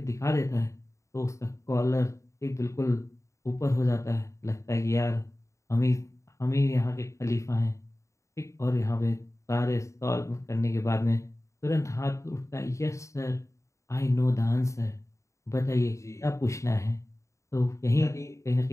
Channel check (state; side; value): late; right; 0.14 ms